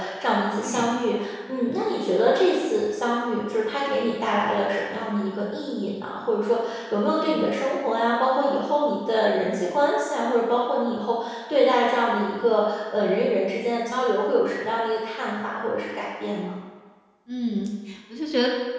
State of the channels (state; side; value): identical; both; correlation 1.00